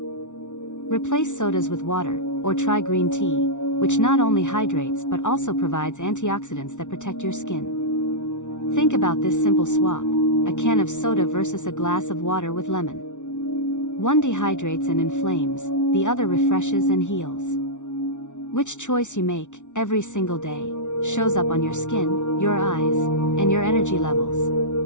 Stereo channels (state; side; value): late; right; 0.85 ms